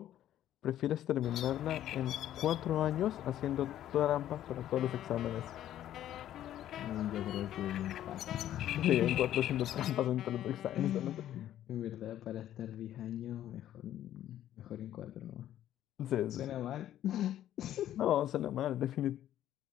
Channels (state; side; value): quieter; right; 12.0 dB